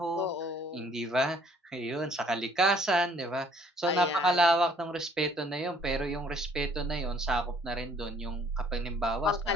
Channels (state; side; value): normal; both; correlation 0.60